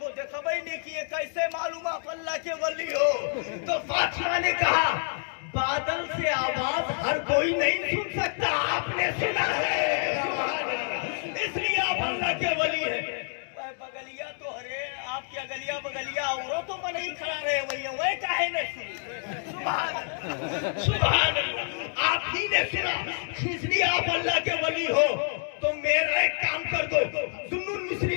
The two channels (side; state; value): right; silent; 56 dB below the other